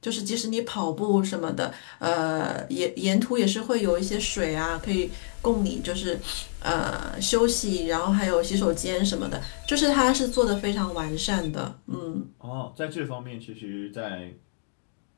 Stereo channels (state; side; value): silent; right; digital silence